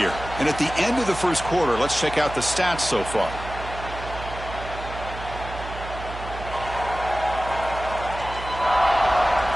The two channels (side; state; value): right; noise; hum, 10 dB below the sound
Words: And at the end of the first quarter, let's check out the stats so far.